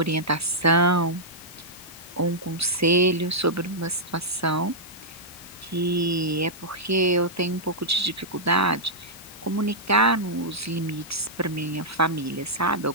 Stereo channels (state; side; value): normal; both; correlation -0.09